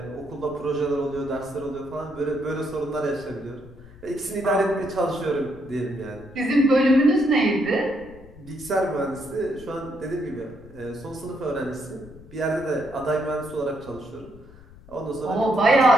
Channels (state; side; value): noise; left; rumble, 21 dB below the sound